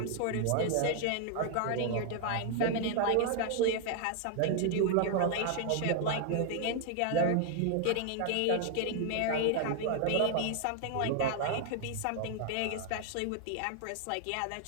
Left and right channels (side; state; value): both; different; correlation 0.00